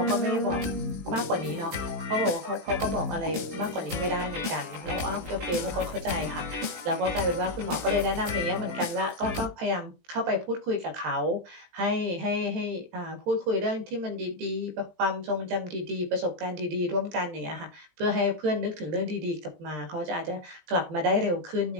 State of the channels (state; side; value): late; left; 20 ms